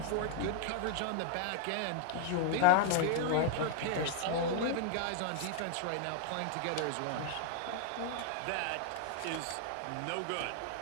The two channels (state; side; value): different; both; correlation -0.01